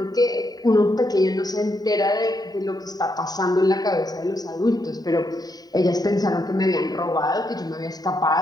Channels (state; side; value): late; right; 0.19 ms